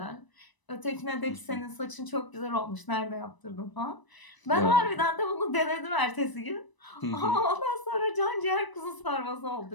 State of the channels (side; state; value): right; late; 1.0 ms